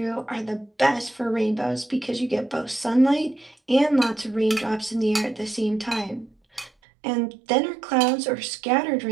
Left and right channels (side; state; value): left; drops out; at 6.7 s